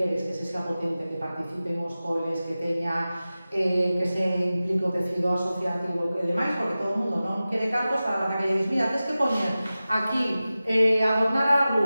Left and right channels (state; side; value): inverted; both; correlation -0.96